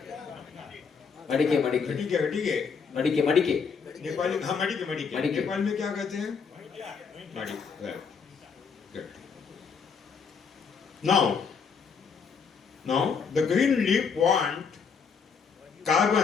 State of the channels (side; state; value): right; quieter; 5.9 dB